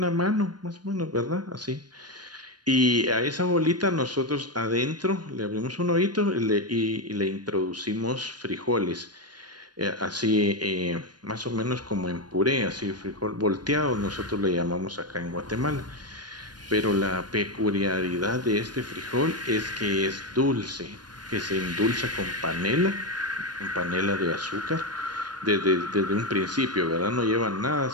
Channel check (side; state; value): left; late; 0.70 ms